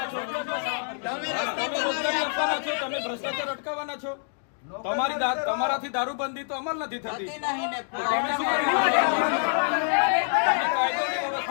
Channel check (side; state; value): right; silent; digital silence